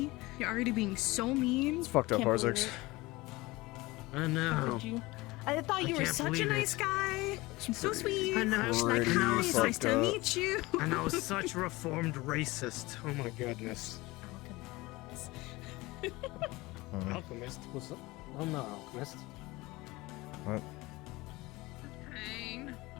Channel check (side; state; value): right; quieter; 21.3 dB